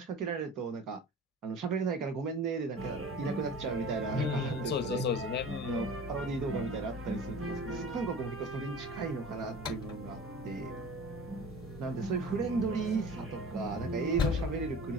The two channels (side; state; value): both; normal; correlation 0.39